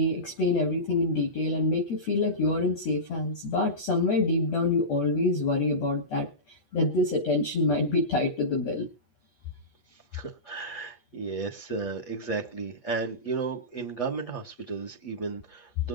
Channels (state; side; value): late; right; 8.3 ms